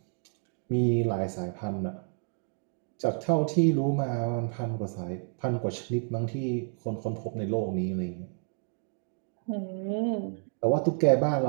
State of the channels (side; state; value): left; silent; 58 dB below the other